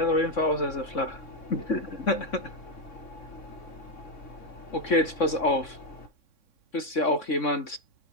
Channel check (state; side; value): late; right; 3.6 ms